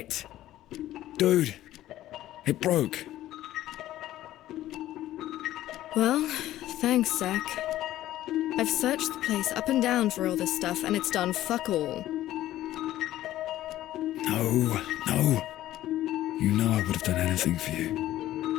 Dude, it broke. Well, thanks, Zach. I've searched the place up and down for all this stuff, and it's done fuck all. No. You know I would have done anything for you.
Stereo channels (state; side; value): quieter; right; 14.1 dB